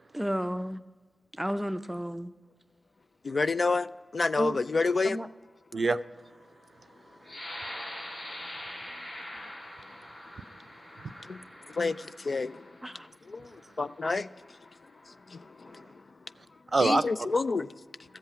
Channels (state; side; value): normal; both; correlation 0.93